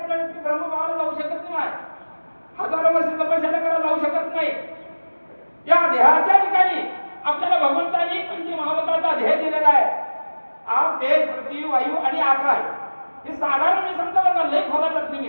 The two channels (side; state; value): both; inverted; correlation -1.00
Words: व्यक्ती ब्रह्मभावाला जाऊ शकत नाही, हजारो वर्ष तपश्चर्या करायला जाऊ शकत नाही. या देहाच्या ठिकाणी आपल्याला भगवंतांनी पंचमहाभूताचा देह दिलेला आहे. आप, तेज, पृथ्वी, वायू आणि आकाश. हे साधारण मी सांगतो बघा, लय खोला जात